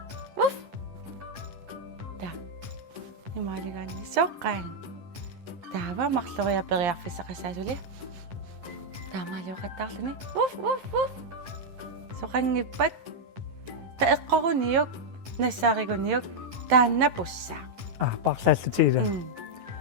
ta imaliganni soqqaan taava marloriaperiarfissaqassaasuli taamaaluuqattaarluni uff soqangippat taeqqoruniuk nassaariguniuk taannapussaa парлааллутигила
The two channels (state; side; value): late; left; 10 ms